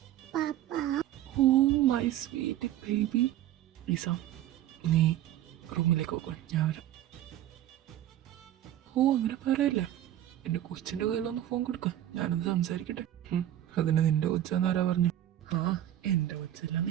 Oh my sweet baby. Isa, നീ റൂമിലേക്ക് പോകോ, ഞാൻ വരാം. ഓ അങ്ങനെ പറയല്ലേ, എൻ്റെ കൊച്ചിൻ്റെ കയ്യിലൊന്ന് ഫോൺ കൊടുക്കാം, ഞാനൊന്ന് സംസാരിക്കട്ടെ. അതിന് നിന്റെ കൊച്ചാന്നാരാ പറഞ്ഞു? എൻ്റെ കൊച്ചല്ലാന്ന്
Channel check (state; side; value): quieter; left; 12.5 dB